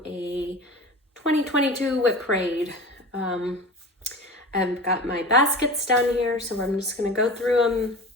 a 2022 WIP parade. I've got my baskets down here, so I'm just going to go through them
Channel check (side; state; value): both; normal; correlation 0.34